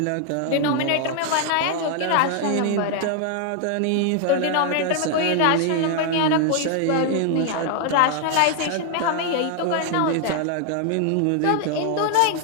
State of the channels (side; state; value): both; different; correlation 0.00